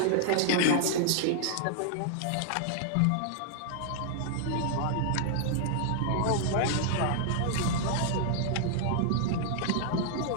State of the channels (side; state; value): both; different; correlation -0.01